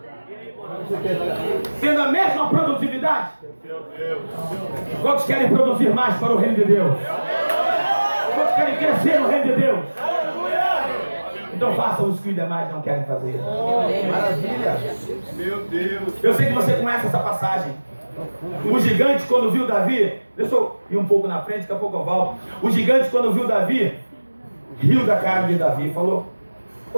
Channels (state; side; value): inverted; both; correlation -1.00